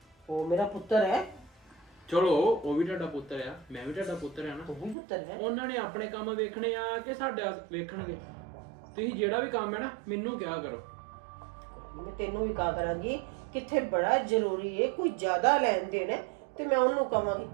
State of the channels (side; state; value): left; drops out; at 5.0 s